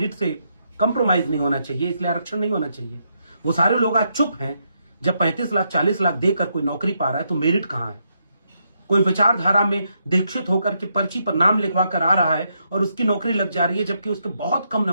से कंप्रोमाइज नहीं होना चाहिए, इसलिए आरक्षण नहीं होना चाहिए। वो सारे लोग आज चुप हैं। जब 35 लाख 40 लाख देकर कोई नौकरी पा रहा है तो मेरिट कहां है? कोई विचारधारा में दीक्षित होकर के पर्ची पर नाम लिखवा कर आ रहा है और उसकी नौकरी लग जा रही है, जबकि उसके बहुत कम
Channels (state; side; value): inverted; both; correlation -0.79